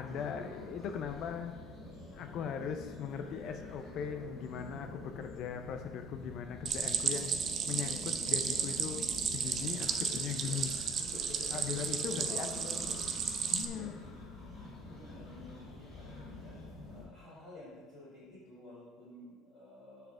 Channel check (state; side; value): normal; both; correlation 0.56